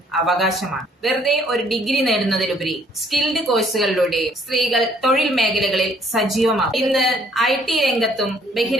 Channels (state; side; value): normal; both; correlation 0.63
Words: അവകാശമാണ്. വെറുതെ ഒരു ഡിഗ്രി നേടുന്നതിലുപരി സ്കിൽഡ് കോഴ്സുകളിലൂടെ സ്ത്രീകൾ തൊഴിൽ മേഖലകളിൽ സജീവമാകും. ഇന്ന് IT രംഗത്തും